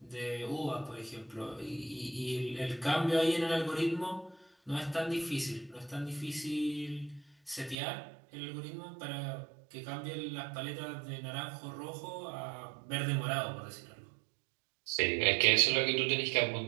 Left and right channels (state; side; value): drops out; left; at 7.8 s